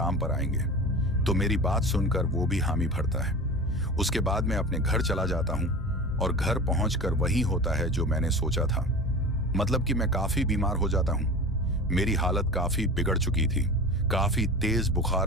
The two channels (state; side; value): normal; both; correlation 0.33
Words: पर आएंगे। तो मेरी बात सुनकर वो भी हामी भरता है। उसके बाद मैं अपने घर चला जाता हूं और घर पहुंचकर वही होता है जो मैंने सोचा था। मतलब कि मैं काफी बीमार हो जाता हूं। मेरी हालत काफी बिगड़ चुकी थी। काफी तेज